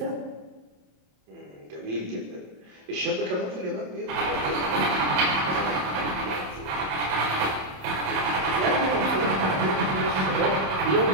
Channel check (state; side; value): late; left; 27 ms